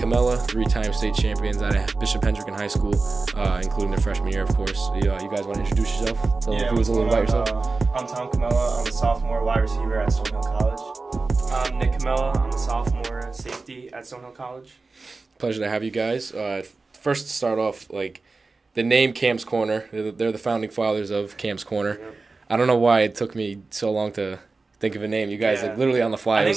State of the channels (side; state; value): left; quieter; 3.8 dB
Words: 3-time state champions at Bishop Hendricken High School, including their freshman year, of course. You guys want to introduce yourself? Tell us a little about yourself. I'm Tom Comella. I'm a sophomore wide receiver at StoneHill College. I'm Nic Comella. I'm a sophomore safety at StoneHill College. Pleasure to have you guys. First, to start off, like the name Cam's Corner. They're the founding fathers of Cam's Corner. Yep. I don't know why it took me so long to think of a name. You guys, like, literally on the fly. I